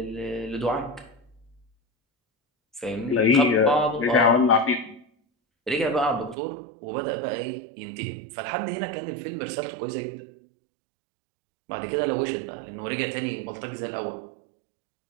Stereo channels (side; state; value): left; drops out; at 6.4 s